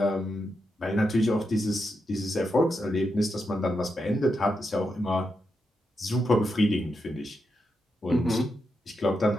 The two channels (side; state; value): both; normal; correlation 0.85